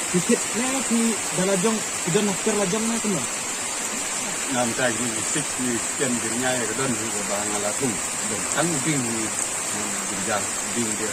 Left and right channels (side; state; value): both; identical; correlation 1.00